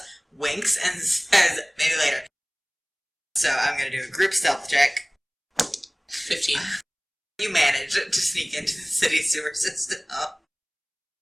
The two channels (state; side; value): identical; both; correlation 1.00